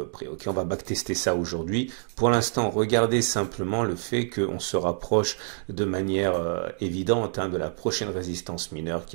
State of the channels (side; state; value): left; silent; digital silence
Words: près. On va backtester ça aujourd'hui. Pour l'instant, regardez simplement le fait qu'on se rapproche de manière évidente de la prochaine résistance mineure qui